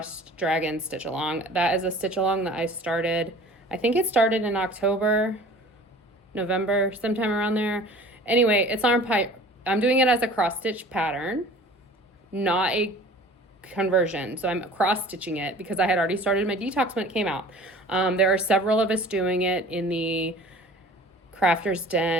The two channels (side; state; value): both; normal; correlation 0.45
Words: Dragon stitch along. That is a stitch along that I started. I think it started in October, November, sometime around there. Anyway, it's on pipe. I'm doing it as a cross stitch pattern, not a conversion. So I'm cross stitching it because I had already started my detox when it came out. There are several of us doing it in the Crafters